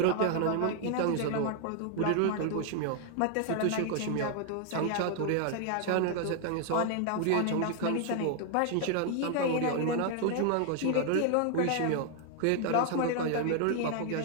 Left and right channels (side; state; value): both; different; correlation 0.00